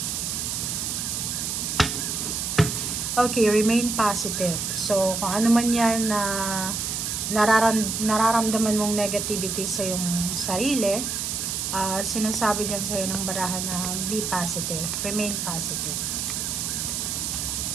Okay, remain positive. So, kung ano man yan na nararamdaman mong negativity sa iyong sarili, sinasabi dyan sa'yo ng barahan na be positive, remain positive.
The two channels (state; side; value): noise; right; hiss, 2 dB below the sound